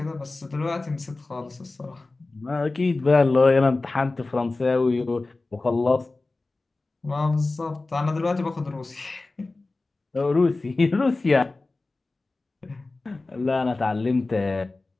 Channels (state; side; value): quieter; right; 3.3 dB